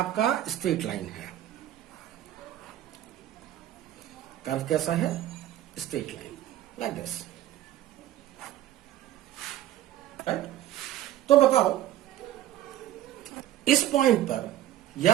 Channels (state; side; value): quieter; left; 13.1 dB